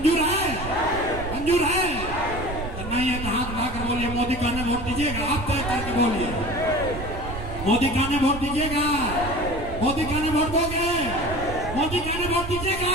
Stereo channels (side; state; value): right; noise; rumble, 8 dB below the sound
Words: है? मंजूर है? तो नहीं है तो हाथ उठाकर बोलिए, मोदी कहने वोट दीजिएगा। आप तय करके बोलिए, मोदी कहने वोट दीजिएगा? मोदी कहने वोट दोगे? मोदी कहने वोट दीजिएगा?